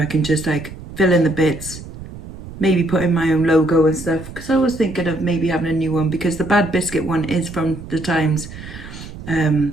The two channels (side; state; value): right; noise; rumble, 13 dB below the sound